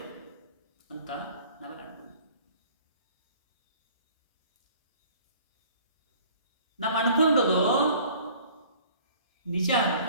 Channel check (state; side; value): inverted; both; correlation -0.52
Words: ಅಂತ ನಾವೆಲ್ಲ ನಾವು ಅನ್ಕೊಂಡದು ನಿಜ